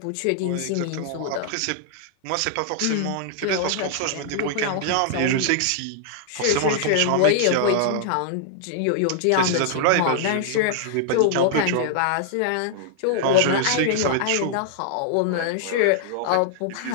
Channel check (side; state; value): both; different; correlation -0.01